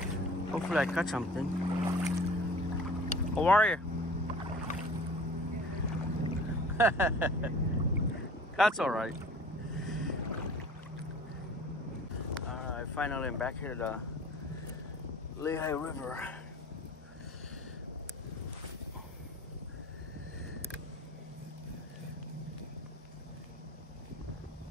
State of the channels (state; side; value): normal; both; correlation 0.45